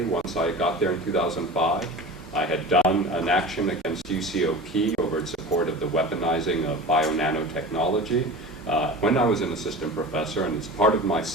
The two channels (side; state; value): both; normal; correlation 0.34